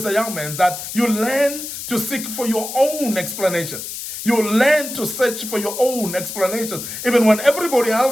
a young man that you learn to seek for your own explanations. You learn to search for your own explanations, even when everybody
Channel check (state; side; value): noise; left; hiss, 8 dB below the sound